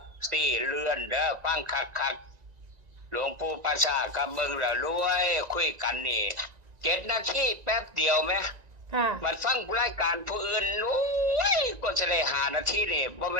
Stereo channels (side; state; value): left; late; 1.9 ms